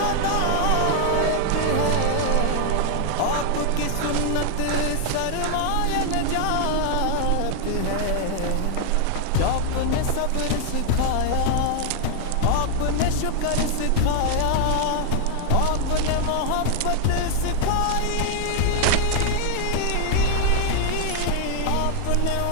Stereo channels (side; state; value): both; different; correlation 0.00